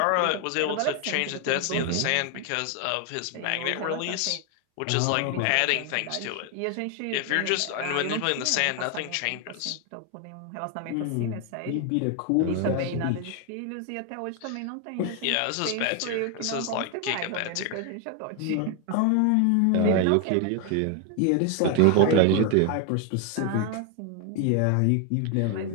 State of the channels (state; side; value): different; both; correlation 0.01